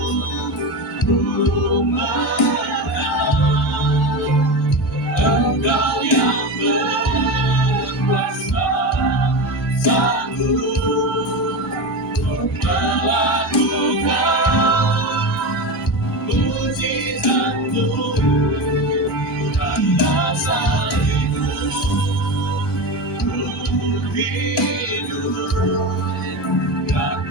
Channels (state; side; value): normal; both; correlation 0.21